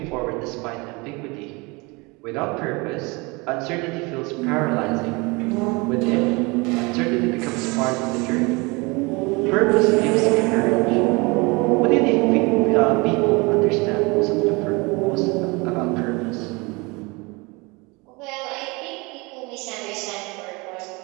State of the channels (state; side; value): quieter; left; 26.5 dB